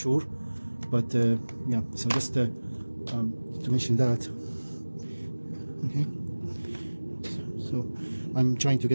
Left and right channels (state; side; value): inverted; both; correlation -1.00